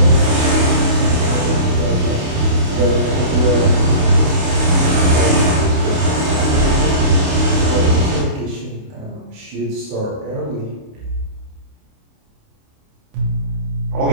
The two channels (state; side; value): late; left; 28 ms